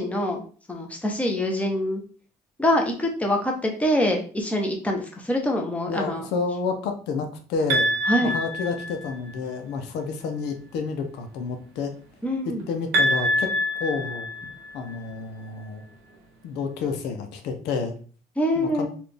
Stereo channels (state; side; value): normal; both; correlation 0.53